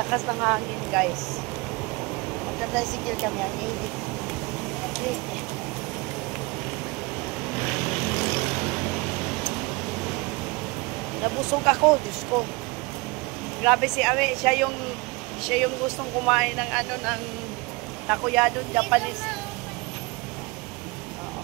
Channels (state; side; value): quieter; left; 25.4 dB